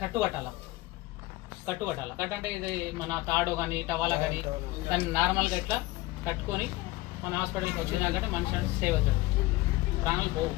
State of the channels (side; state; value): right; quieter; 19.4 dB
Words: కట్టుకట్టాల కట్టు అంటే ఇది మన తాడు కానీ టవాలా కానీ దాన్ని నార్మల్గా ఇట్లా కట్టుకొని మన హాస్పిటల్కి వచ్చినాకంటే మనిషి అంటే సేవ్ అవుతాడు, ప్రాణాలు పోవు।